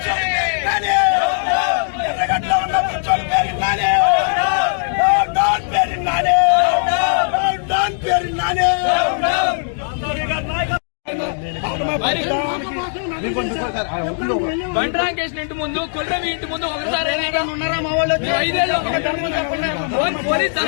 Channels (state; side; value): silent; right; digital silence